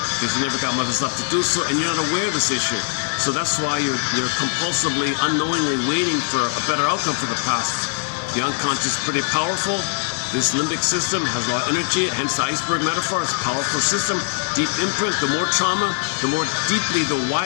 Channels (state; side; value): silent; right; 65 dB below the other